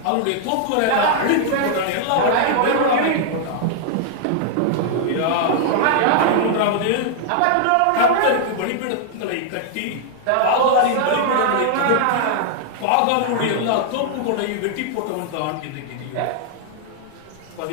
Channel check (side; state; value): both; different; correlation -0.01